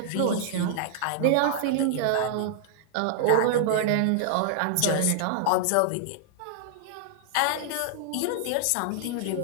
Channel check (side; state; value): both; different; correlation -0.01